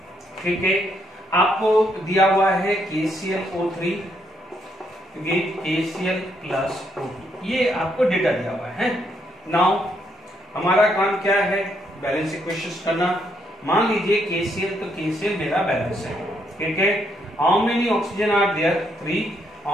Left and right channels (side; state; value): both; normal; correlation 0.74